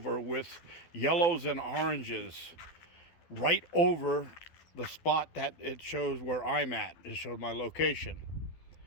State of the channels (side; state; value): right; late; 12 ms